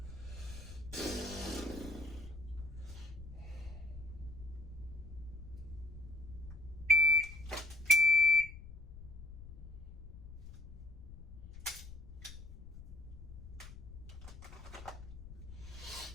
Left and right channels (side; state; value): left; noise; rumble, 13 dB below the sound